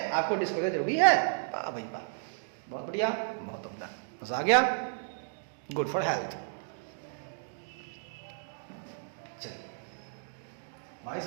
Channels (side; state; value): left; silent; digital silence